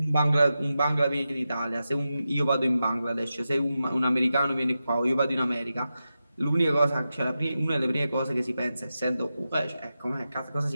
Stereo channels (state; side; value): inverted; both; correlation -0.91